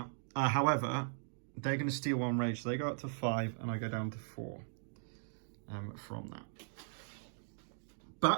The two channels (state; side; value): silent; left; digital silence